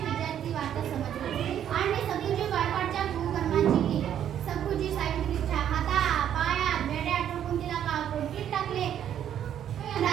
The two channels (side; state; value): left; quieter; 10.0 dB